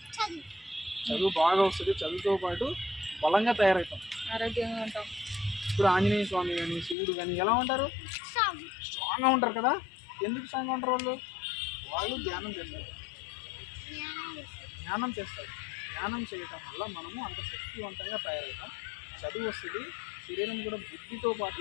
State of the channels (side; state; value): right; drops out; at 7.0 s